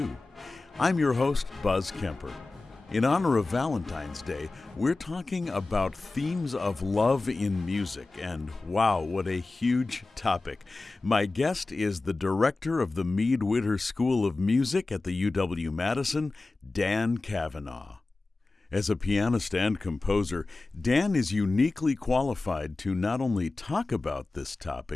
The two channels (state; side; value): quieter; right; 3.4 dB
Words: I'm your host, Buzz Kemper. In honor of Valentine's Day, we're talking about themes of love in music, and wow, what a huge topic. My guest is the director of the Mead-Witter School of Music at the UW-Madison, Dan Cavanagh. As a pianist and composer, Dan is uniquely qualified to not only talk about this